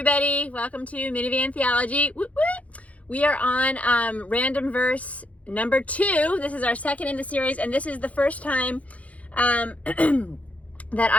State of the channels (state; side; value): late; right; 0.067 ms